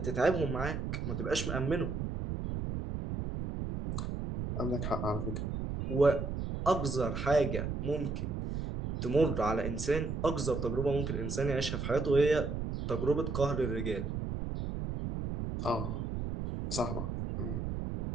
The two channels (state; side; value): noise; right; rumble, 3 dB below the sound